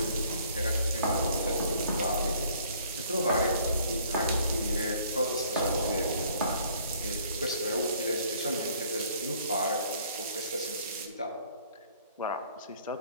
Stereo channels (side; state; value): both; inverted; correlation -0.59